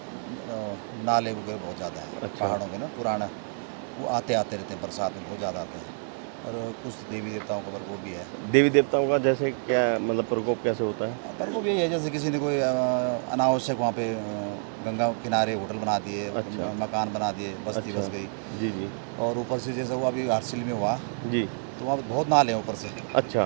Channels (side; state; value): left; silent; 59 dB below the other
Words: नाले वगैरह बहुत ज़्यादा हैं। अच्छा। पहाड़ों में ना पुराना वो आते आते रहते हैं, बरसात में बहुत ज़्यादा आते हैं। और कुछ देवी देवताओं का प्रकोप भी है। देवी देवताओं का जैसे क्या मतलब प्रकोप कैसे होता है? प्रकोप यही है, जैसे किसी ने कोई अनावश्यक वहाँ पे गंगा किनारे होटल बना दिए, अच्छा। मकान बना दिए, बस्ती अच्छा। बस गई। जी जी। और ऊपर से जैसे वो अभी हरसिल में हुआ जी। तो वहाँ पे बहुत नाले हैं ऊपर से। अच्छा।